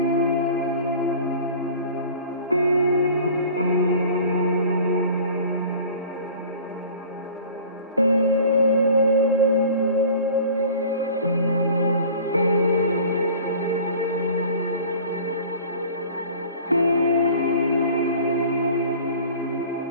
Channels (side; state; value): both; inverted; correlation -0.45